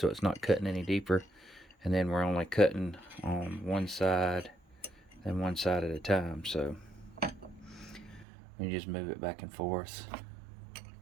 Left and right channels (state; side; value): drops out; left; at 8.2 s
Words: it's not cutting any deeper, and then we're only cutting on one side and one side at a time. So you just move it back and forth